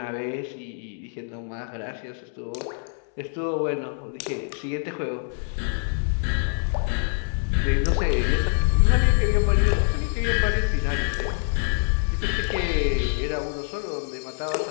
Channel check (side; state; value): right; silent; 62 dB below the other